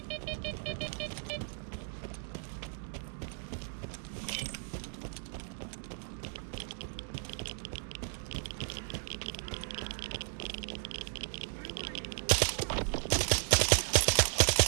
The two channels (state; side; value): silent; left; 54 dB below the other